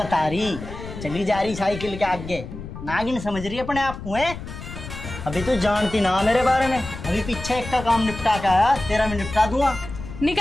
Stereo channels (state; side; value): noise; left; rumble, 11 dB below the sound